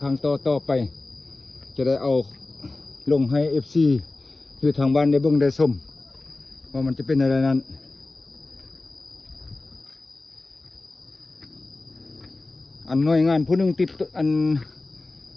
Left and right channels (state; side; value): quieter; right; 3.1 dB